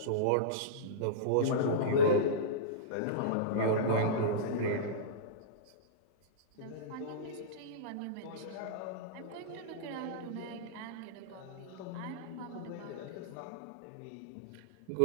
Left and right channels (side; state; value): both; different; correlation -0.05